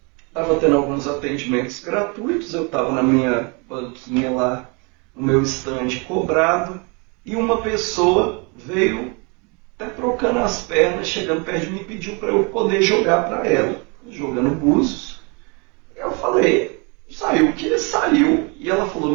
estava tendo alguns atendimentos gratuitos, eu estava na minha banquinha lá, no meu stand cobrado, e uma pessoa veio até trocando as pernas, chegando perto de mim e pediu para eu poder jogar para ela, jogando búzios. Eu falei, saiu o que saiu, e ela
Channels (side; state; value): left; quieter; 32.0 dB